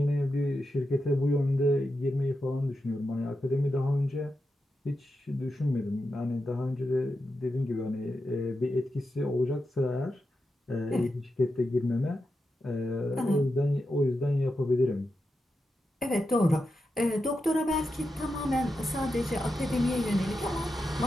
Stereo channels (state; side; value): normal; both; correlation 0.88